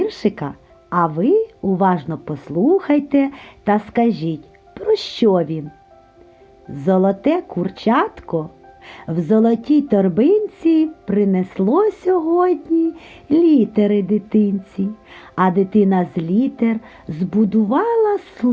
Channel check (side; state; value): both; identical; correlation 1.00